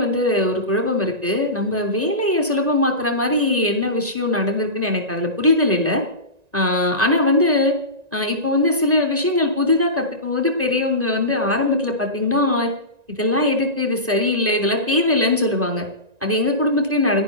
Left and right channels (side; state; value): left; late; 1.9 ms